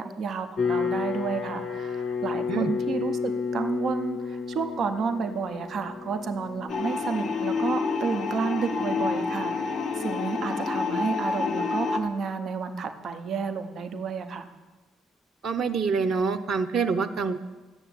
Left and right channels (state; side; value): normal; both; correlation 0.72